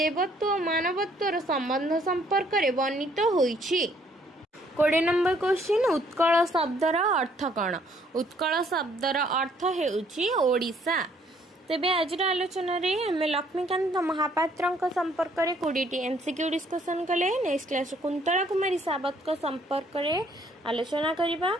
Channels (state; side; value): normal; both; correlation 0.64